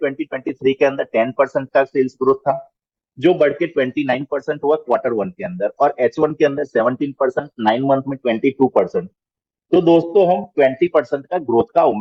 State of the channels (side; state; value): both; identical; correlation 1.00